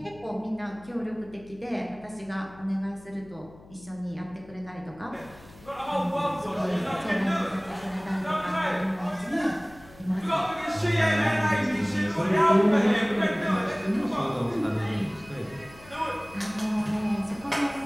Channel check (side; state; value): left; noise; hum, 22 dB below the sound